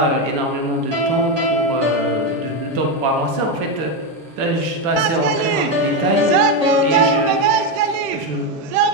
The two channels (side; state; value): left; late; 7.9 ms